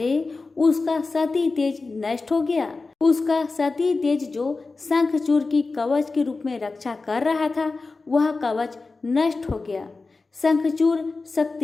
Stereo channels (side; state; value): right; quieter; 3.8 dB